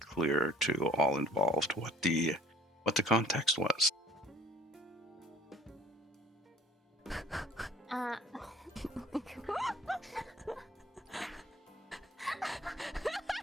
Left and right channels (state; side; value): normal; both; correlation 0.54